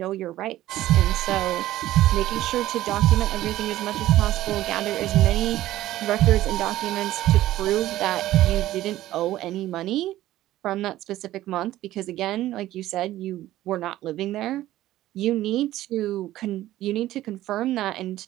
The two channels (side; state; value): left; quieter; 14.7 dB